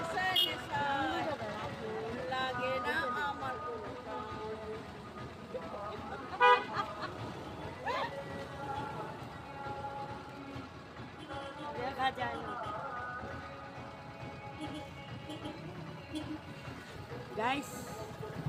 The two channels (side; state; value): both; identical; correlation 1.00